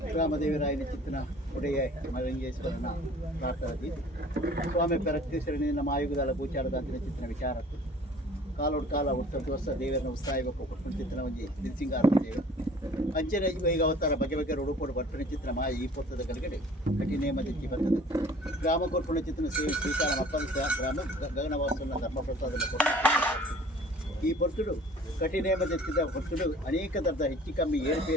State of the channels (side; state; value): both; normal; correlation 0.50